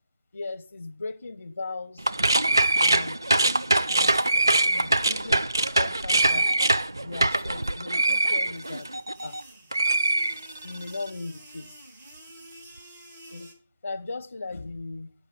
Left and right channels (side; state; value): both; inverted; correlation -0.79